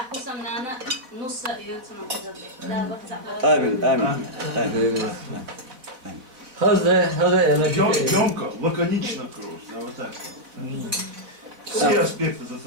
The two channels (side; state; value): left; late; 4.0 ms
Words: آمين آمين هذا أنا Емко, лаконично круз. Да, вот так. Все аспекты